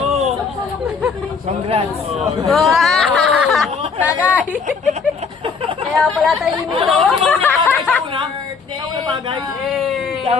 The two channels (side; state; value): right; quieter; 5.2 dB